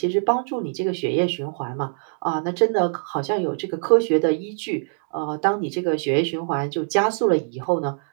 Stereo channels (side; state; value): left; silent; digital silence